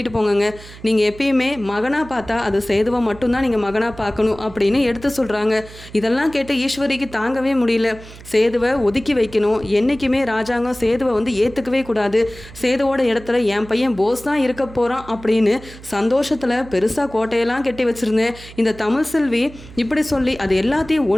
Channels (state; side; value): noise; right; hum, 18 dB below the sound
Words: போங்கங்க. நீங்கள் எப்பயுமே மகனாக பார்த்தா அது சேதுவை மட்டும்தான் நீங்கள் மகனாக பார்க்கணும் அப்படின்னு எடுத்து சொல்கிறாங்க. இதெல்லாம் கேட்டு ஈஸ்வரிக்கு தாங்கவே முடியல. சேதுவை ஒதுக்கி வைக்கணும். என்றைக்குமே ராஜாங்கம் சேதுவை வந்து ஏற்றுக்கவே கூடாது. சேதுவோட இடத்துல என் பையன் போஸ் தான் இருக்க போகிறான் அப்படின்னு சந்தோஷத்தில் பெருசாக கோட்டையெல்லாம் கட்டி வச்சுருந்தேன். இந்த தமிழ் செல்வி இப்படி சொல்லி அது எல்லாத்தையும்